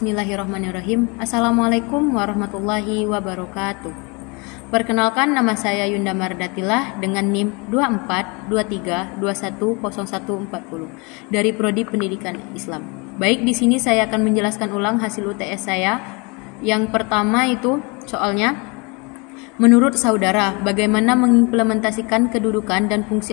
Assalamualaikum warahmatullahi wabarakatuh. Perkenalkan, nama saya Yunda Mardatilah dengan NIM 2423210140 dari Prodi Pendidikan Islam. Baik, di sini saya akan menjelaskan ulang hasil UTS saya. Yang pertama itu soalnya, menurut saudara, bagaimana mengimplementasikan kedudukan dan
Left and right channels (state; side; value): quieter; right; 29.7 dB